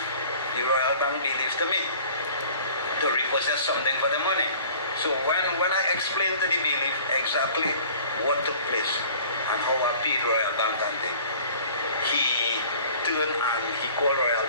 Royal Bank bailiff to me to repossess something for the money. So when I explained to the bailiff exactly what took place and how I paid Royal Bank and thing, he turned and he called Royal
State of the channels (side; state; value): both; inverted; correlation -0.49